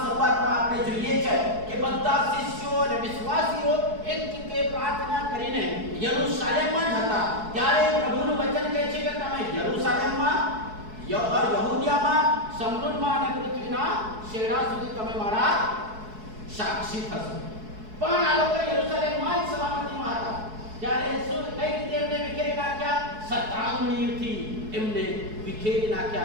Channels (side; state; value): left; late; 4.7 ms